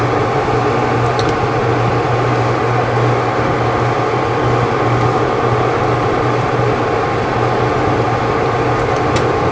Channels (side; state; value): both; identical; correlation 1.00